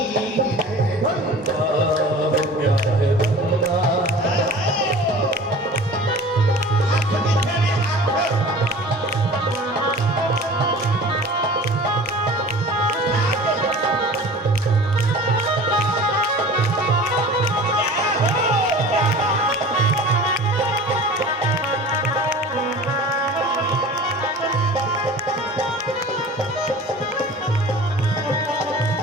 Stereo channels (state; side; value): normal; both; correlation 0.41